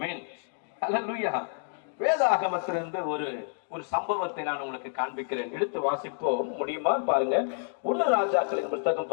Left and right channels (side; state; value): right; silent; digital silence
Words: ஹல்லேலூயா. வேதாகமத்திலிருந்து ஒரு சம்பவத்தை நான் உங்களுக்கு காண்பிக்கிறேன். எடுத்து வாசிப்போம், முடியுமா பாருங்க. 1 ராஜாக்களின் புத்தகம்